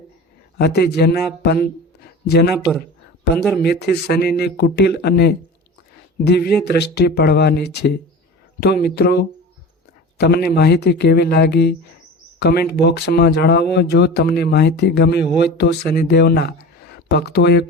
જેના પર 15 મેથી શનિની કુટિલ અને દિવ્ય દ્રષ્ટિ પડવાની છે. તો મિત્રો તમને માહિતી કેવી લાગી કમેન્ટ બોક્સમાં જણાવો. જો તમને માહિતી ગમી હોય તો શનિદેવના ભક્તોએ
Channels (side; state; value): both; normal; correlation 0.35